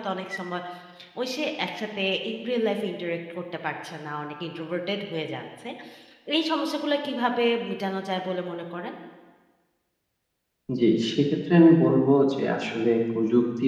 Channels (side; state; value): both; identical; correlation 1.00